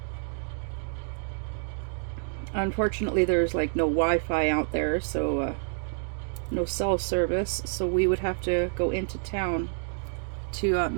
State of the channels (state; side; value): silent; left; digital silence